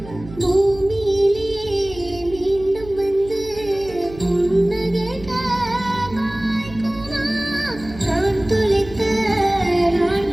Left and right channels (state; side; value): noise; right; hum, 16 dB below the sound